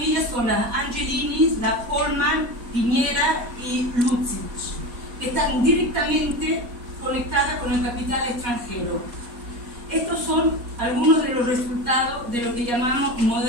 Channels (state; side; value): late; left; 4.2 ms